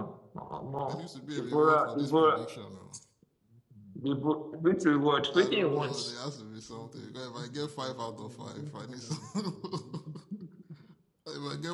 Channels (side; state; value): both; identical; correlation 1.00